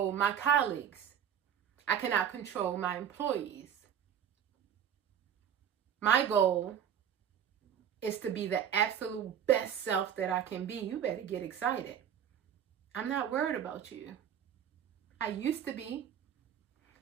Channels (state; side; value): quieter; left; 8.9 dB